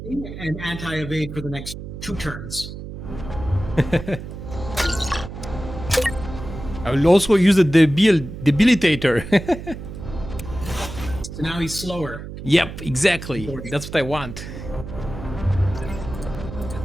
And anti-evade for the next 2 turns. I will also use the debilitator. So now he's slower. Yep, exactly. That's what I want.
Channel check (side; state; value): right; noise; hum, 10 dB below the sound